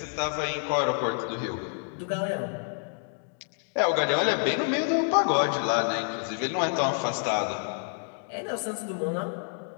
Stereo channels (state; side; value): silent; right; 59 dB below the other